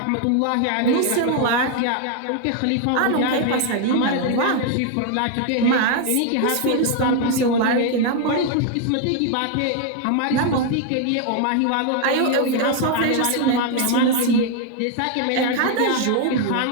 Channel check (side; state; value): both; different; correlation 0.00